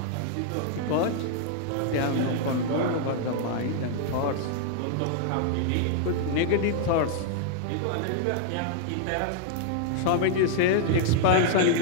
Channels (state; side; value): different; both; correlation -0.01